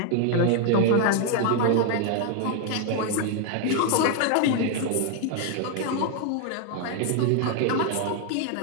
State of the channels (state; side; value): different; both; correlation 0.00